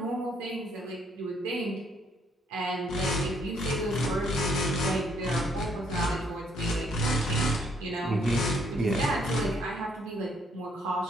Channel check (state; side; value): normal; both; correlation 0.67